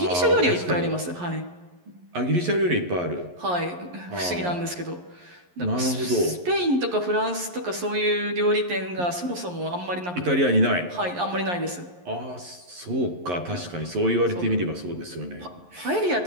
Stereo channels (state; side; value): late; left; 11 ms